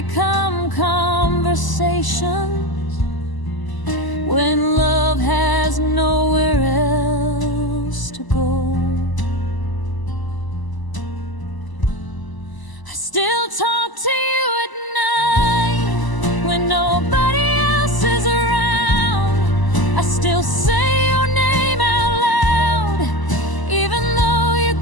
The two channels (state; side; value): late; right; 1.0 ms